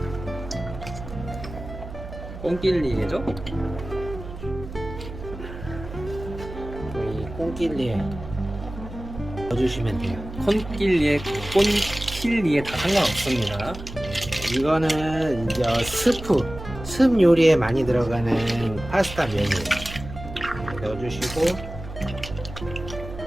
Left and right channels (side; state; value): right; noise; hum, 12 dB below the sound